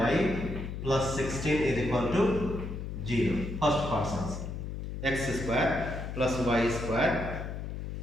plus 16 is equal to 0. First part's answer. X square plus y square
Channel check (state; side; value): noise; left; hum, 6 dB below the sound